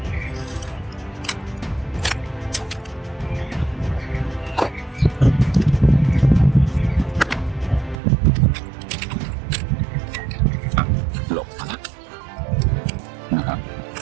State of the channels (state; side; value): drops out; left; at 8.0 s